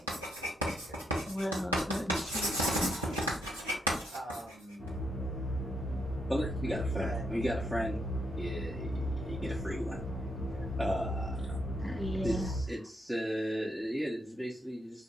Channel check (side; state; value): both; normal; correlation 0.79